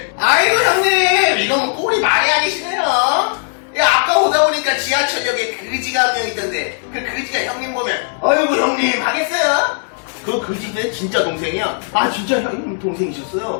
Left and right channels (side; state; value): right; silent; digital silence